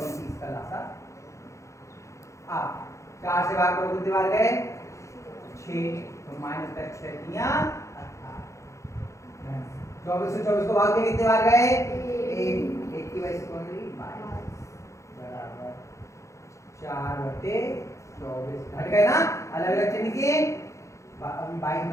इसका लासा। अब 4 से भाग करो कितने बार गए? 6। तो माइनस का 6 दिया 24 से 24 को भाग के कितने बार गए? 1 की वजह से कौन ली? 22 बराबर 4/24 घट गए ना, अलग अलग चिन्ह किए। 22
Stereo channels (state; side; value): late; right; 0.15 ms